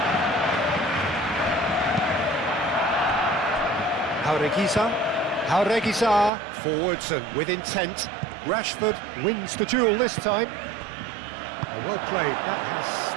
Jauregui forwards and with intent. Rashford wins the duel this time. Well played, that has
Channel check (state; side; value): drops out; left; at 6.3 s